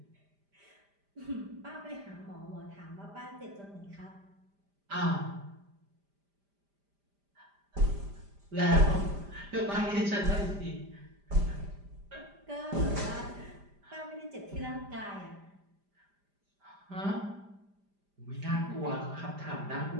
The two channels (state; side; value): late; left; 5.0 ms